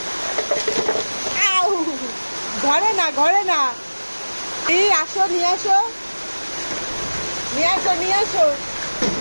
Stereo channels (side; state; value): both; inverted; correlation -1.00